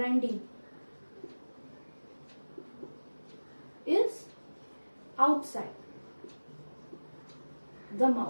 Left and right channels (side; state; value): both; inverted; correlation -1.00